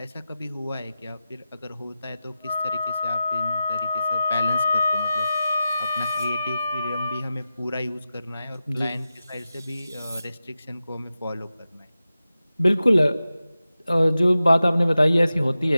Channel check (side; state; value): both; inverted; correlation -0.93